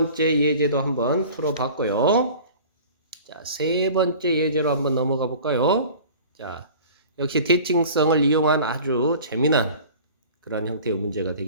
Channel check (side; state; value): both; inverted; correlation -0.43